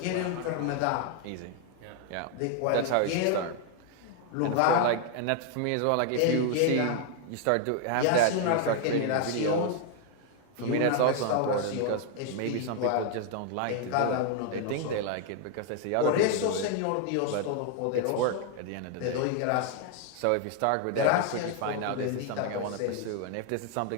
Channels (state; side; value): different; both; correlation 0.00